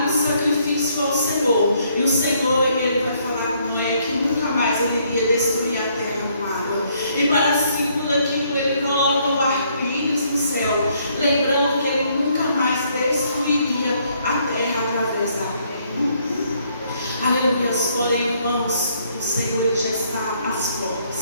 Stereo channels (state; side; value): inverted; both; correlation -0.69